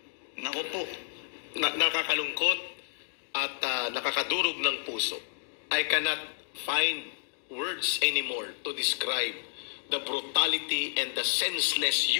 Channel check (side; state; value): right; silent; digital silence